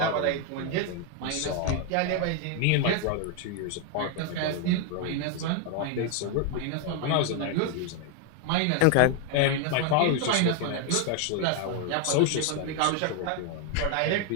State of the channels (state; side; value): different; both; correlation 0.01